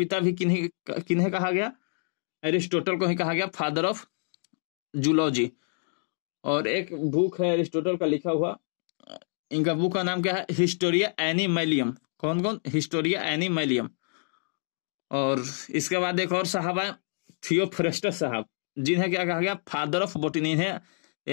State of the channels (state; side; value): silent; right; digital silence